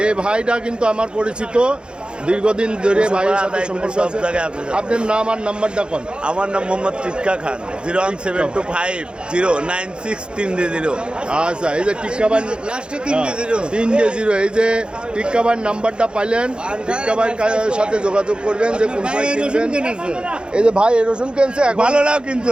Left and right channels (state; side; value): late; left; 0.052 ms